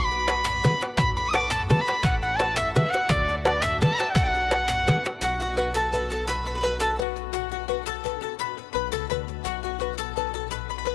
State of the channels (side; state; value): right; drops out; at 7.1 s